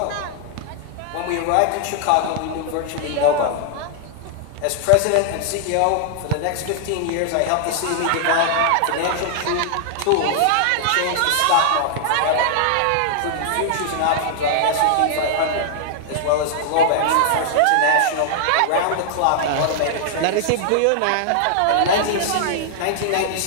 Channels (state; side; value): different; both; correlation 0.00